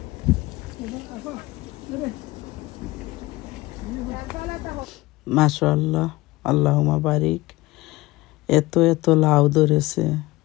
মাশাআল্লাহ, আল্লাহুম্মা বারিক। এত লাউ ধরেছে।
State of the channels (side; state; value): right; quieter; 20.0 dB